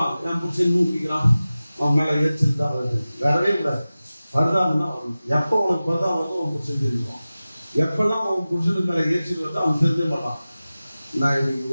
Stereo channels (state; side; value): inverted; both; correlation -0.96